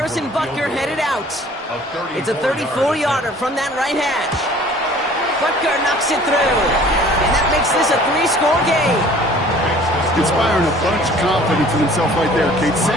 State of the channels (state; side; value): normal; both; correlation 0.51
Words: Butker headed out. It's a 34-yarder from that right hash. Butker knocks it through. And that makes this a 3-score game. Inspiring a bunch of confidence in himself right there, Kate.